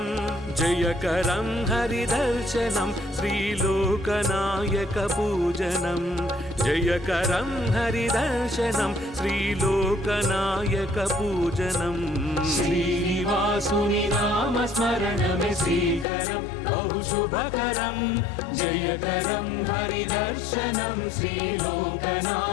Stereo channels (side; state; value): right; drops out; at 16.1 s